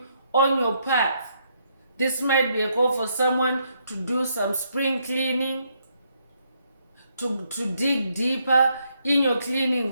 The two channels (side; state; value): both; inverted; correlation -0.74